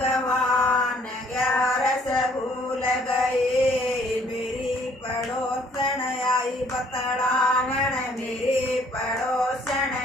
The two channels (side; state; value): both; normal; correlation 0.61